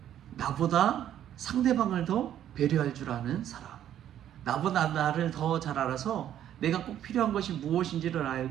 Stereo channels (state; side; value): quieter; left; 10.9 dB